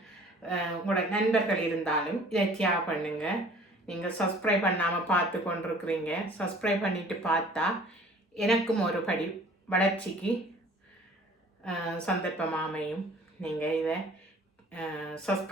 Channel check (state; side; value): normal; both; correlation 0.51